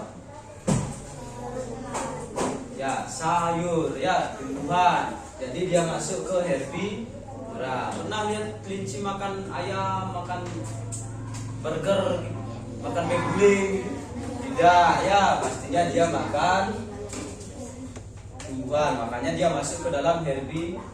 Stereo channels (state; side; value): identical; both; correlation 1.00